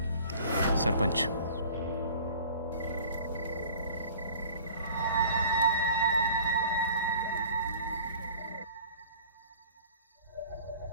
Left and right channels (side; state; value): both; inverted; correlation -0.47